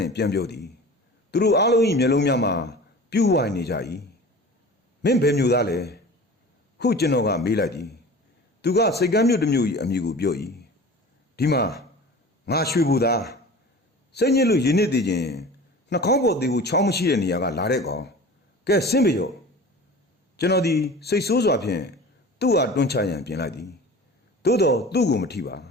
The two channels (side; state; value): both; normal; correlation 0.39